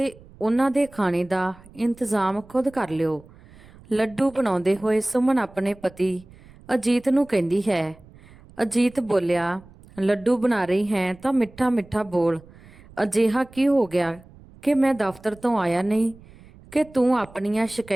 ਉਹਨਾਂ ਦੇ ਖਾਣੇ ਦਾ ਇੰਤਜ਼ਾਮ ਖੁਦ ਕਰ ਲਿਓ। ਲੱਡੂ ਬਣਾਉਂਦੇ ਹੋਏ ਸੁਮਨ ਆਪਣੇ ਪਤੀ ਅਜੀਤ ਨੂੰ ਕਹਿੰਦੀ ਹੈ। ਅਜੀਤ ਬੋਲਿਆ, ਲੱਡੂ ਬਣਾ ਰਹੀ ਹੈ ਤਾਂ ਮਿੱਠਾ ਮਿੱਠਾ ਬੋਲ। ਅਜਿਹਾ ਕੀ ਹੋ ਗਿਆ ਕਿ ਮੈਂ ਦਫ਼ਤਰ ਤੋਂ ਆਇਆ ਨਹੀਂ ਕਿ ਤੂੰ ਆਪਣੀਆਂ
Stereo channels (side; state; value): right; noise; rumble, 23 dB below the sound